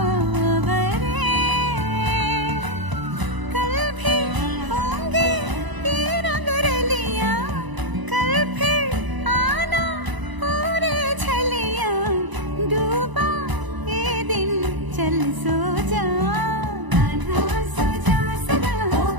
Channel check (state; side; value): late; left; 1.0 ms